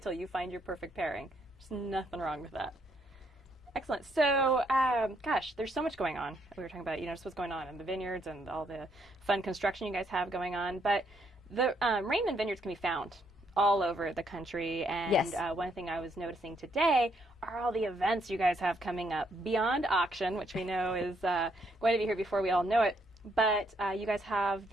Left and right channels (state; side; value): normal; both; correlation 0.73